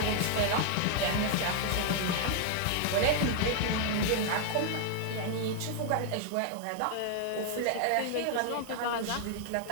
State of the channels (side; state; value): both; different; correlation 0.00